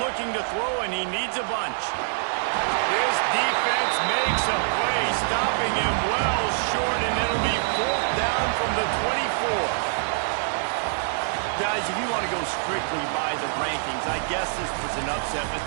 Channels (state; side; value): silent; left; digital silence